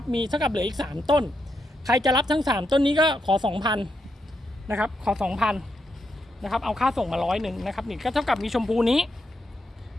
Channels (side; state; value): both; normal; correlation 0.83